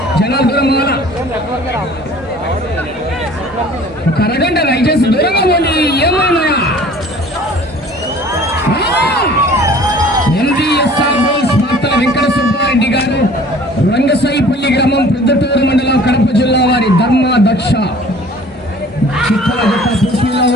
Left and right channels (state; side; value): normal; both; correlation 0.49